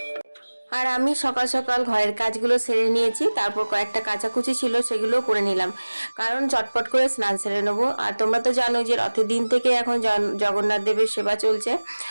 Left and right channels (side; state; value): both; inverted; correlation -1.00